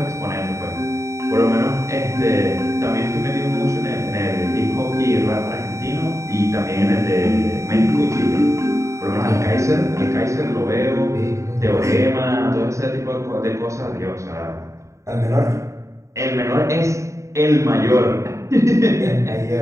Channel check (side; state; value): left; late; 0.14 ms